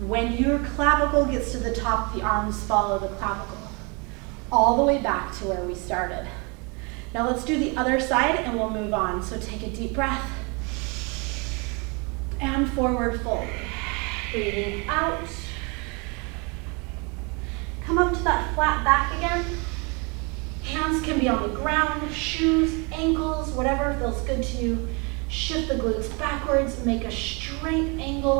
When your clavicle gets to the top, the arms follow the clavicle, all the way back to where we started. Now let's do the other side and we'll move on. So take a deep breath and forward fold. Breathing out. Come up to that flat back again. Hands can be on the ground, shoes, ankles, whatever feels good to you. Shift the glutes backwards, make a straight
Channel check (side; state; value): left; quieter; 31.3 dB